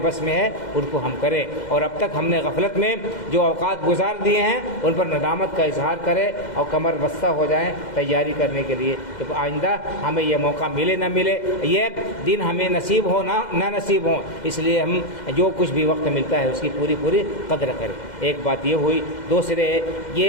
بس میں ہے ان کو ہم کریں، اور اب تک ہم نے غفلت میں جو اوقات گزار دیے ہیں ان پر ندامت کا اظہار کریں اور کمر بستہ ہو جائیں تیاری کرنے کے لیے کہ آئندہ ہمیں یہ موقع ملے نہ ملے، یہ دن ہمیں نصیب ہو نہ نصیب ہو، اس لیے ہم جو کچھ بھی وقت ملتا ہے اس کی پوری قدر کریں۔ ایک بات یہ ہوئی، دوسرے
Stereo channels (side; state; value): right; late; 2.1 ms